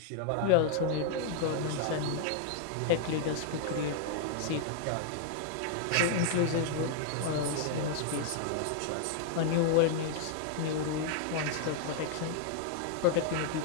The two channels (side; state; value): both; different; correlation 0.00